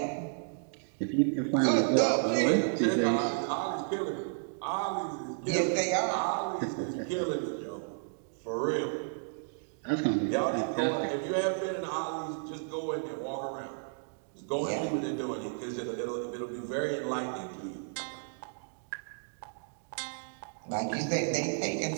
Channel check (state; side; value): silent; left; digital silence